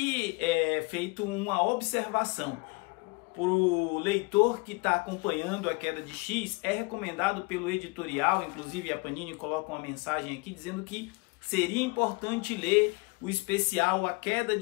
é feito uma observação. Para o leitor que está acompanhando A Queda de X, é recomendado pelo editorial, inclusive a Panini coloca uma mensagem aqui dizendo que seria importante ler o especial A Queda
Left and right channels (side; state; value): right; quieter; 27.3 dB